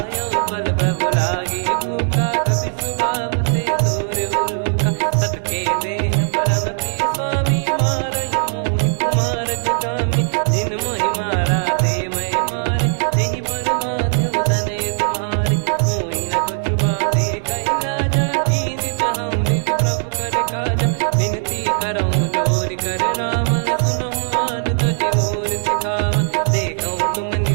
पल प्रभु लागी भूखा, कपि स्वभाव ते तोर उरुखा। सबके देह परम प्रिय स्वामी, मारई मोहि कुमार गगामी। जिन मोहि मारा ते मैं मारे, तेहि पर बांधो तने तुम्हारे। मोहि न कुछ बांधे कैलाजा, कीन चाहूँ निज प्रभु कर काजा। विनती करऊँ जोर कर रावण, सुनहु मान तजि मोर सिखावन। देखऊँ तुम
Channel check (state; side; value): silent; left; 64 dB below the other